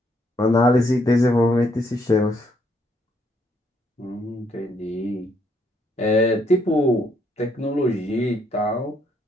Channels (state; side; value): normal; both; correlation 0.71